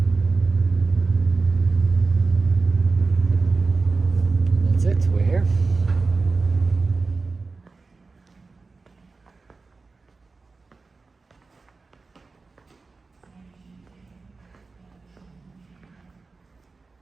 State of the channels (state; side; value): quieter; left; 4.0 dB